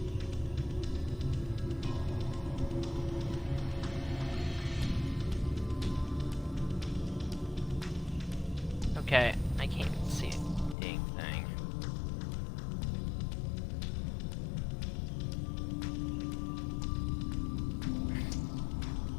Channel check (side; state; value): right; drops out; at 10.8 s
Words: Okay, I can't see a dang thing.